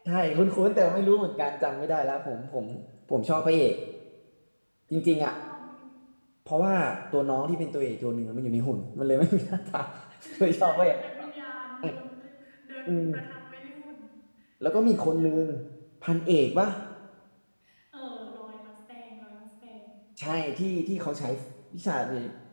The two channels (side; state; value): both; inverted; correlation -1.00